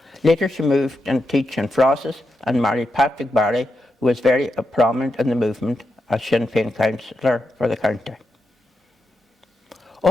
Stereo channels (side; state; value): both; normal; correlation 0.87